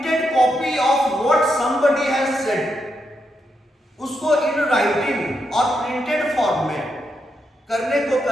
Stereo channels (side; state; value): both; normal; correlation 0.82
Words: copy of what somebody has said, उसको इन राइटिंग और प्रिंटेड फॉर्म में करने को